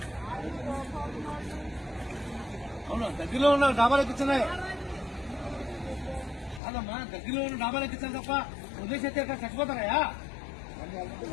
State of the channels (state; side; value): drops out; right; at 6.6 s